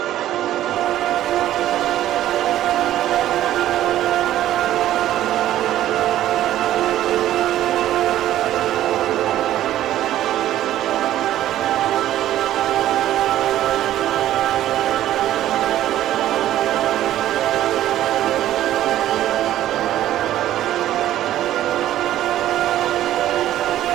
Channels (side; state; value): left; quieter; 13.0 dB